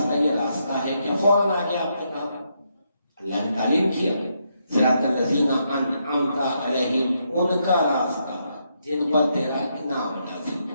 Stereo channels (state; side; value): inverted; both; correlation -0.79